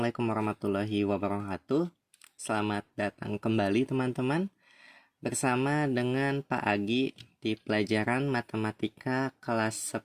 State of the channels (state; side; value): identical; both; correlation 1.00